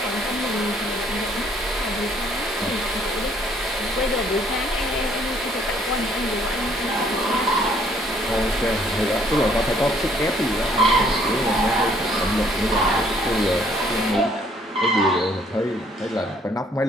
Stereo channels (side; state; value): both; normal; correlation 0.63